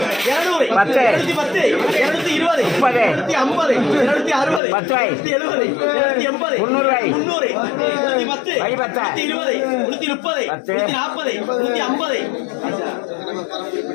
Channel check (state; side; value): drops out; right; at 4.6 s